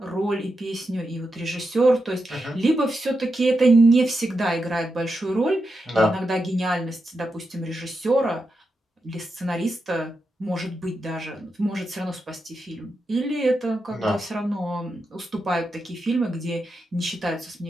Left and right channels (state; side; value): normal; both; correlation 0.87